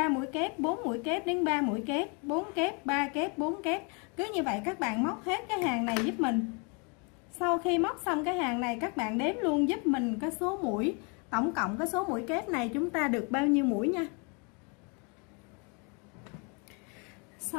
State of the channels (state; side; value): quieter; right; 33.7 dB